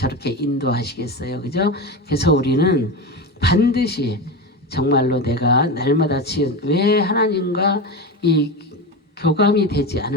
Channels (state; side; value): normal; both; correlation 0.21